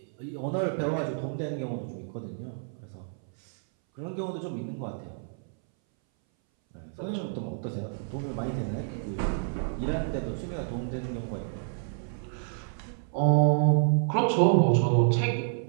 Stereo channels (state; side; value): silent; left; 58 dB below the other